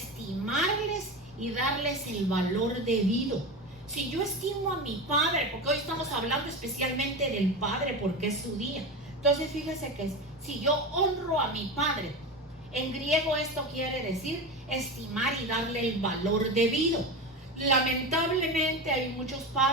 y darles el valor debido. Si yo estimo a mi padre, porque hoy estamos hablando especialmente del padre porque es su día. Entonces fíjese que si yo honro a mi padre, en griego esto quiere decir estimar y darle el valor debido. Lamentablemente hay muchos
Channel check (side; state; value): both; normal; correlation 0.23